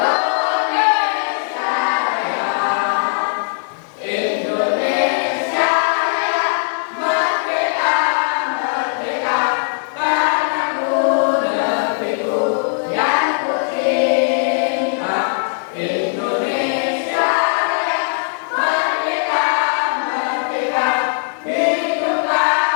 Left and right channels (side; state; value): right; silent; digital silence